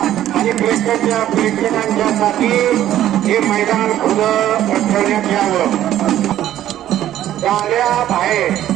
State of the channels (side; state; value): left; quieter; 12.4 dB